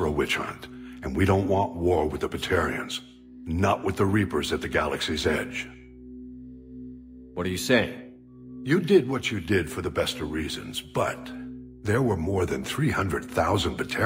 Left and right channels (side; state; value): both; identical; correlation 1.00